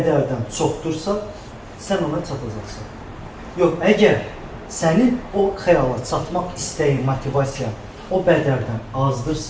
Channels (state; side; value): identical; both; correlation 1.00